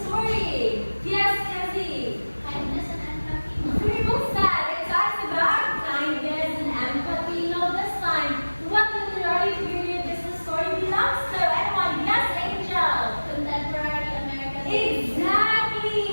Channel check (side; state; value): both; inverted; correlation -1.00